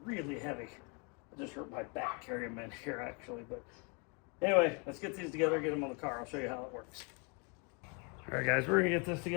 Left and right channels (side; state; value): right; quieter; 34.0 dB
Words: really heavy. I just hurt my back carrying them in here actually. But anyway, let's get these together, get them on the car. I'll show you how it works. All right guys, we're gonna get this